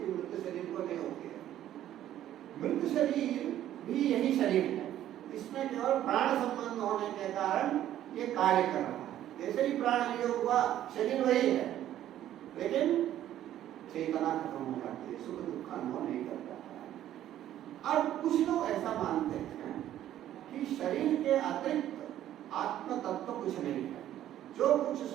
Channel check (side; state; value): left; quieter; 12.1 dB